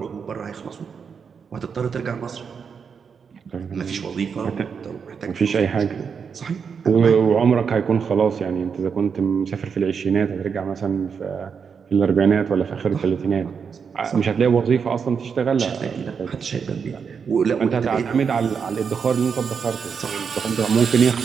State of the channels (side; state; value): left; quieter; 6.3 dB